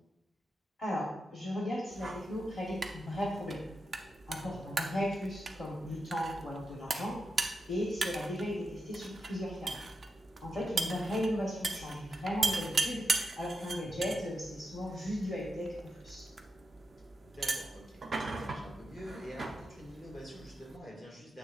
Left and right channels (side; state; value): both; normal; correlation 0.87